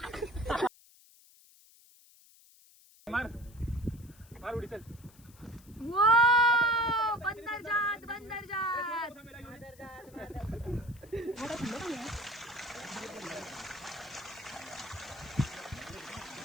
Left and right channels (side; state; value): left; noise; hiss, 25 dB below the sound